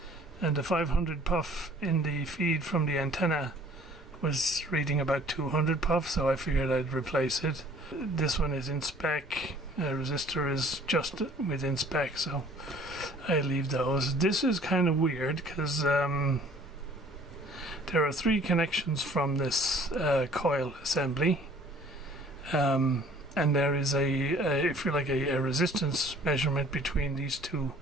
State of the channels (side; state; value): both; normal; correlation 0.53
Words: and the 500 puff in the feed from the antenna was reading about 200 puff, so I figured I'd replace it. This one is in spec, resistor is just within spec, so I leave those. This is kind of weird because there are 3 connections from this coil assembly. And there is if you like, a resistance measurement between these two